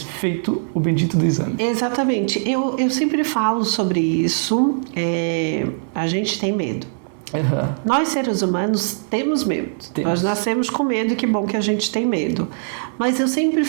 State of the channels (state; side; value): silent; left; digital silence